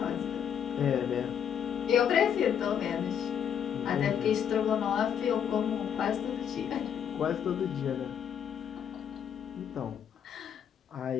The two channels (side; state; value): right; quieter; 8.4 dB